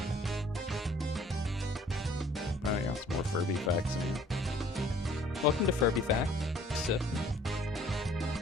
Oh, yeah, some more Furby facts in here. Welcome to Furby Fact. So,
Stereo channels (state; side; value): normal; both; correlation 0.56